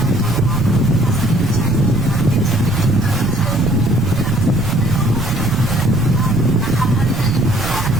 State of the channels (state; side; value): noise; right; rumble, 6 dB below the sound